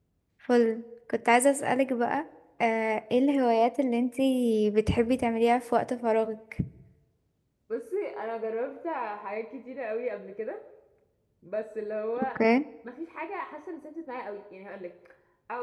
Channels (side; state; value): both; identical; correlation 1.00